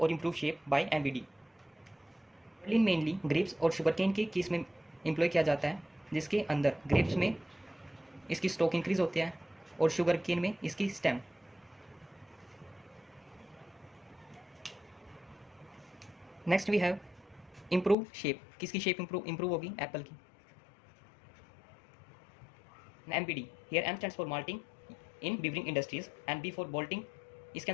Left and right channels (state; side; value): drops out; right; at 17.9 s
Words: improve shape by MBD. gibberellin mainly grapes और sugarcane के case में employ किया जाता है, जिसके अंदर grapes में इसकी स्टॉक इंक्रीज होती है और शुगर केन में इसकी stem. Next we have improve shape. किसकी शेप इम्प्रूव होगी? एप्पल की. MBD, here M stands for malting in beavering industries and B for bolting. इसके